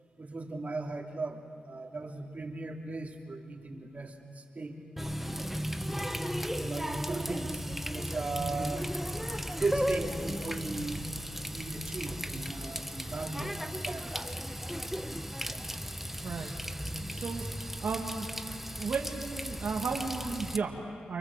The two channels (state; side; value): normal; both; correlation 0.91